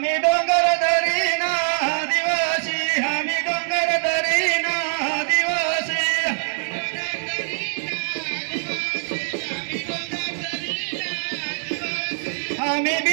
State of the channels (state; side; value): silent; left; digital silence